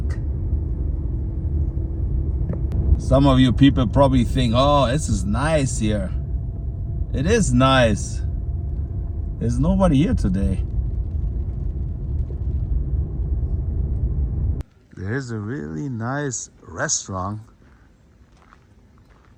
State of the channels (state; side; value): identical; both; correlation 1.00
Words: Some of you people probably think, oh, this is nice here. It is nice. There's nobody here today. There's a really nice restaurant